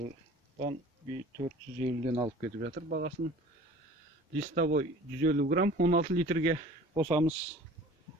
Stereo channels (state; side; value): normal; both; correlation 0.45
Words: 450-ден алып кетіп жатыр бағасын. Листовой 150 грамм 16 литрге қосамыз.